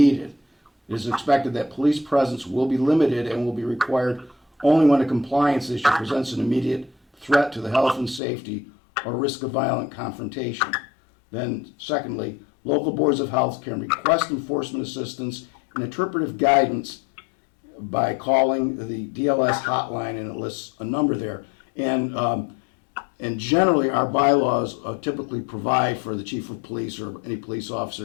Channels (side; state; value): right; drops out; at 8.2 s